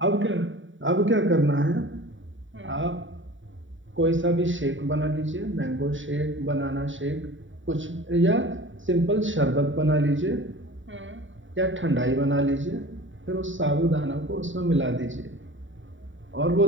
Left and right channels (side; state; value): left; late; 0.56 ms